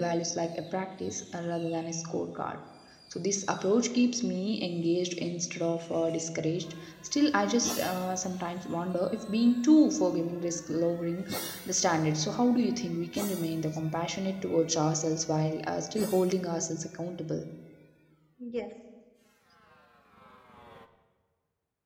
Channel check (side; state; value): both; identical; correlation 1.00